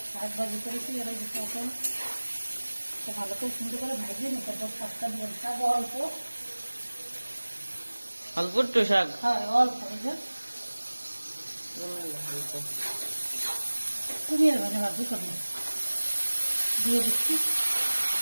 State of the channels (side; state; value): both; inverted; correlation -1.00